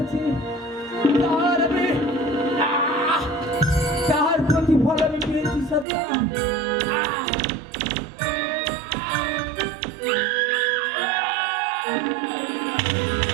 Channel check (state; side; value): drops out; left; at 5.9 s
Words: তার আমি তার প্রতিফল আমি পেয়েছি সন্তান।